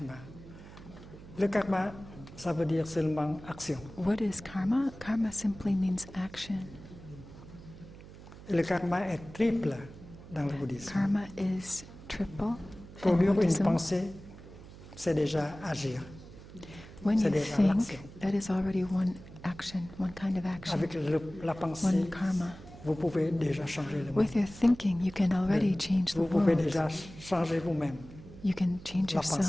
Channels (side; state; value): right; noise; hum, 17 dB below the sound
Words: Le karma, ça veut dire seulement action. What is karma? Karma simply means action. Et le karma est triple dans le bouddhisme. Karma is triple in Produire une Buddhism. pensée, c'est déjà agir. When c'est you déjà think, l'action. that is already one action, one kind of action, Avec la pensée, one karma. vous pouvez déjà changer le monde. With your thinking, you can already change the Vous pouvez world. déjà changer vous-même. You can change La pensée